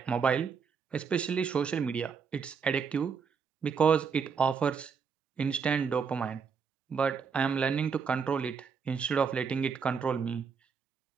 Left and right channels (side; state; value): left; quieter; 6.1 dB